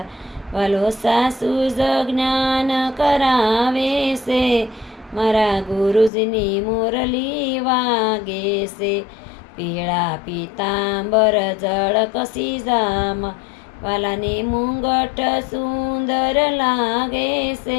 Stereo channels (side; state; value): right; drops out; at 6.1 s